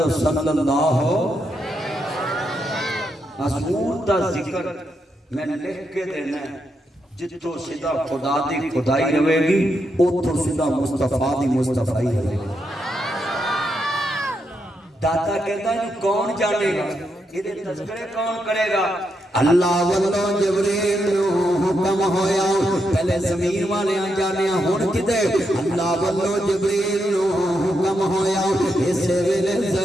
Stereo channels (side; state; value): both; normal; correlation 0.82